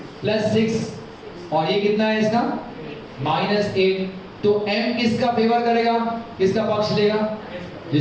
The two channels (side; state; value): both; identical; correlation 1.00